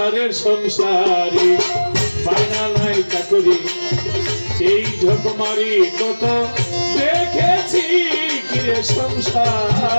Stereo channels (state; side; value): inverted; both; correlation -1.00